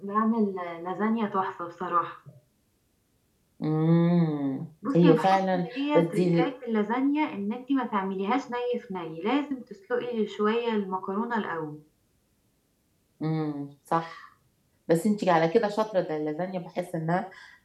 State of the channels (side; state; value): both; identical; correlation 1.00